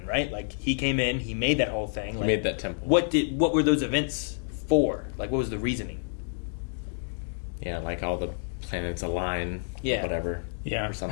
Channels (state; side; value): silent; right; digital silence